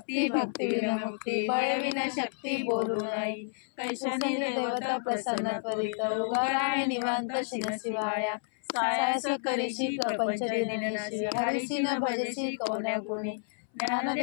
भक्तिविन मुक्ती, बळविन शक्ती बोलू नाही, कैशाने देवता प्रसन्न करीत, उगाराय निवांत शिन शिवाया, सायास करीशी प्रपंच दिननिशी, हरिसी न भजसी कवन्या गुणी,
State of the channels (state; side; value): silent; right; 58 dB below the other